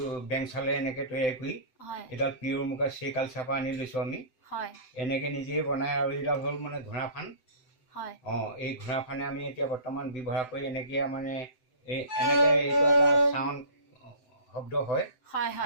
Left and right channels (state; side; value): late; right; 7.8 ms